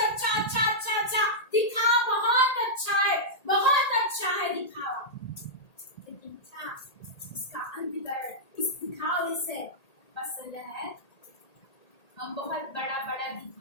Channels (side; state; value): right; late; 1.8 ms